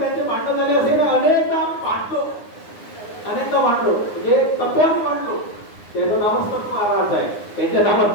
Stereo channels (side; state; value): right; late; 9.7 ms